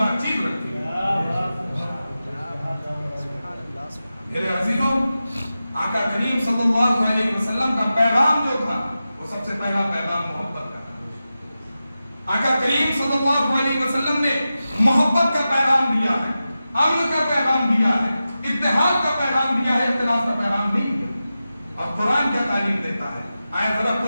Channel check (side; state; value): both; inverted; correlation -0.93